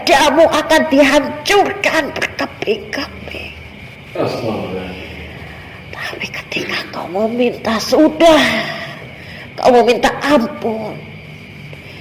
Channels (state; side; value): identical; both; correlation 1.00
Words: akan dihancurkan berkeping-keping. Tapi ketika kau meminta kau meminta ampun,